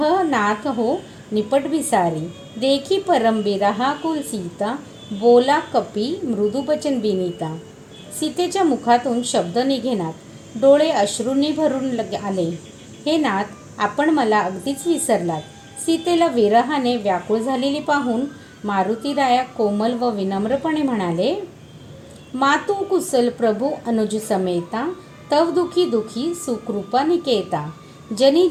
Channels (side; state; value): both; identical; correlation 1.00